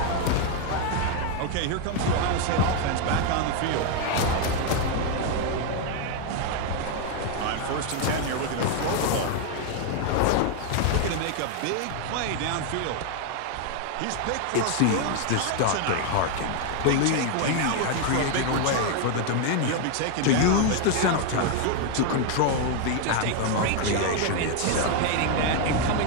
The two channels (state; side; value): different; both; correlation 0.00